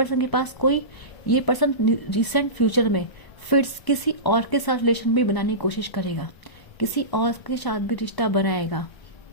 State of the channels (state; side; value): late; right; 1.1 ms